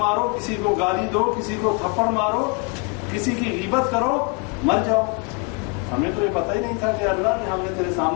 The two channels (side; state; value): right; quieter; 32.7 dB